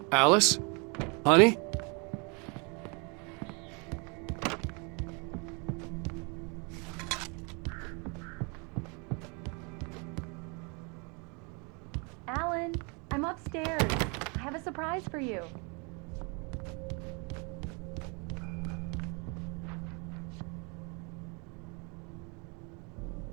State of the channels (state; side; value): quieter; left; 32.7 dB